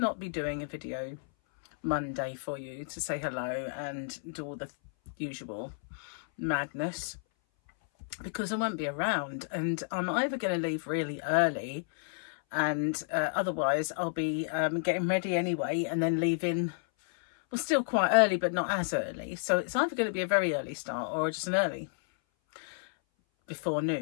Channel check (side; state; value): right; silent; 57 dB below the other